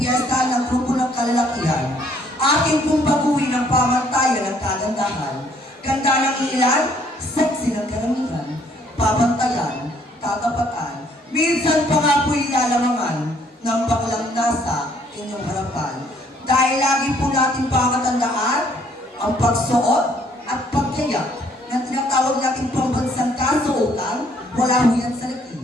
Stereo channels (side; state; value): both; normal; correlation 0.64